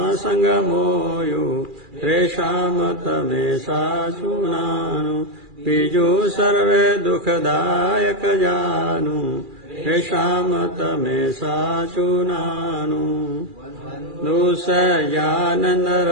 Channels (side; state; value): left; late; 2.4 ms